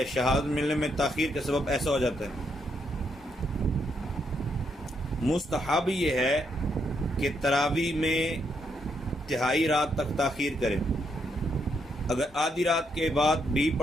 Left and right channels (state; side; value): normal; both; correlation 0.77